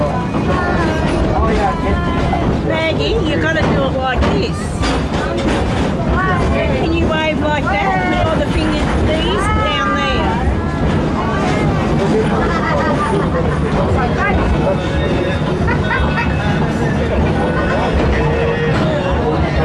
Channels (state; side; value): identical; both; correlation 1.00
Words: Maggie, you've got to do it like this. Can you wave like that? Put all the fingers, these down there.